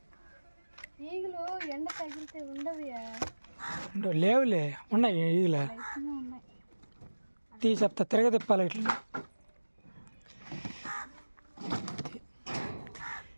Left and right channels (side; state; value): both; inverted; correlation -1.00